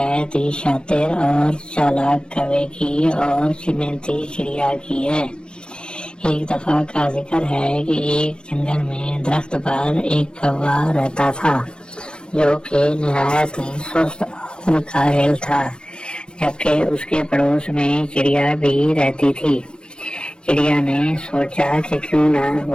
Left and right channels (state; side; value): late; right; 0.054 ms